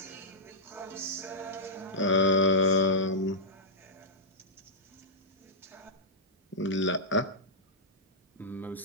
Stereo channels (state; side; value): normal; both; correlation -0.12